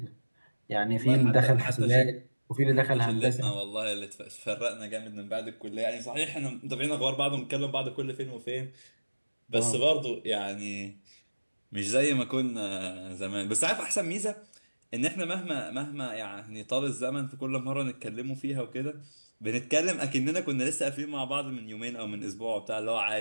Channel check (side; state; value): both; inverted; correlation -1.00